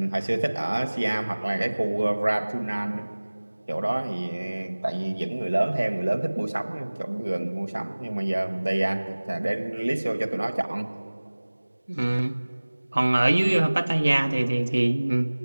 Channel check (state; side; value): inverted; both; correlation -1.00